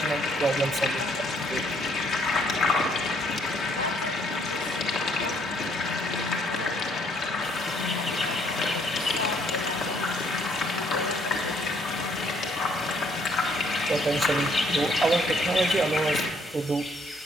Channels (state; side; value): normal; both; correlation 0.66